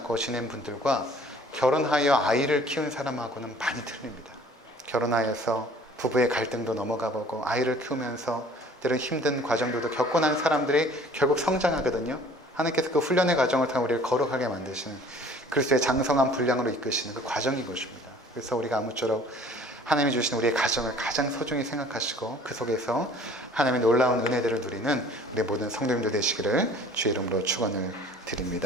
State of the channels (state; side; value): normal; both; correlation 0.51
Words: 지낸 분들과 결혼하여 아이를 키운 사람하고는 많이 틀립니다. 결혼하여서 부부의 갈등도 넘어가 보고 아이를 키우면서 때론 힘든 과정들도 겪고 난 사람들이 결국 성장하거든요. 하나님께서 그 훈련의 과정을 통해 우리를 거룩하게 만드시는 그리스도의 장성한 분량으로 이끄시는 그 과정인 것입니다. 그래서 우리가 아무쪼록 하나님이 주신 우리의 가정을 가장 소중히 생각하시고 그 속에서 하나님의 놀라운 은혜들을 누리는 우리 모든 성도님들 되시기를 주의 이름으로 축원을